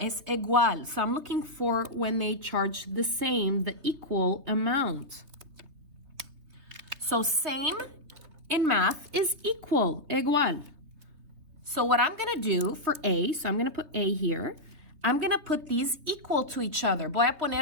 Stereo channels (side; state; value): left; late; 3.2 ms